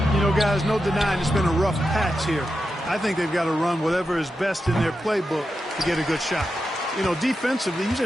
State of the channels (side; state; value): both; normal; correlation 0.89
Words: You know, guys, no denying it's been a rough patch here. I think they've got to run whatever is best in their playbook to get a good shot. You know, defensively, you